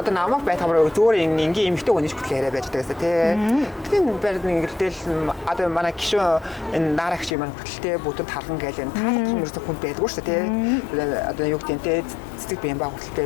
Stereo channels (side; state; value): right; drops out; at 7.4 s